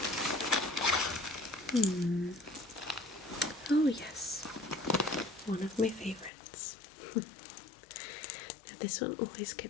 Oh yes, one of my favourites. Now this one always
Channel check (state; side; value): drops out; right; at 6.3 s